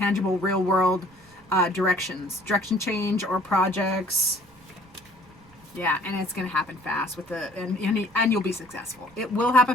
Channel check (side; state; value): right; noise; rumble, 28 dB below the sound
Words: real world direction change or projects. Yeah, and it's going to happen fast with and you'll be successful. It will